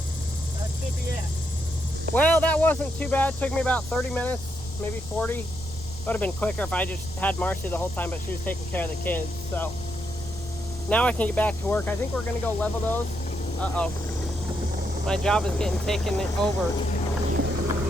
That should be it. Well, that wasn't too bad. It took me about 30 minutes, maybe 40. Would have been quicker if I just had Marcy the whole time, but she was taking care of the kids. So now I can get back to work. I think we're gonna go level those. Uh-oh. My job is getting taken over.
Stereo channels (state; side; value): noise; right; rumble, 13 dB below the sound